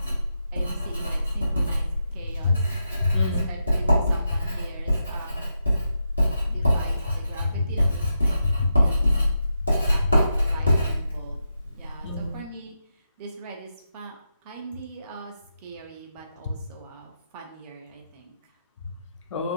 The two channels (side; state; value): both; inverted; correlation -0.86